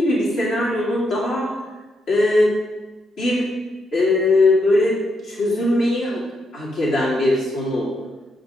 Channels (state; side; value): normal; both; correlation 0.80